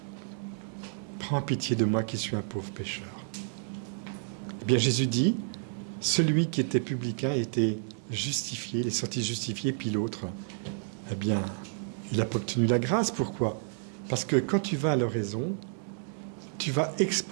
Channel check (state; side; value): silent; left; digital silence